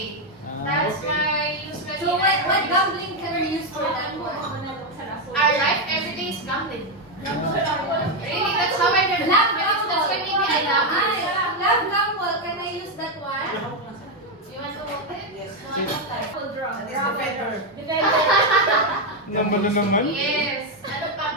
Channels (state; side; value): normal; both; correlation 0.04